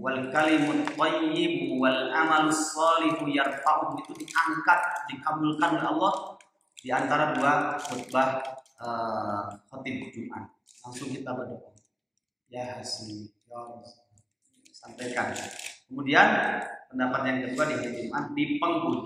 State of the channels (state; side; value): identical; both; correlation 1.00